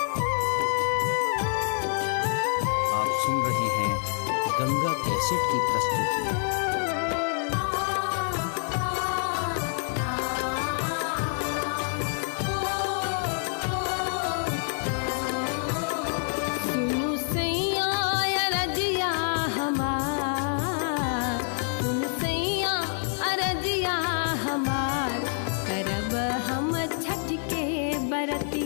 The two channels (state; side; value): silent; right; 60 dB below the other